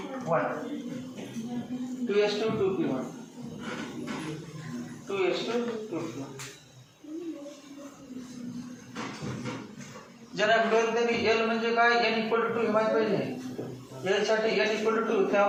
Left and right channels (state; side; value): identical; both; correlation 1.00